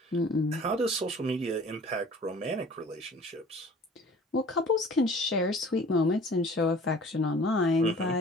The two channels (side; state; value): both; normal; correlation 0.48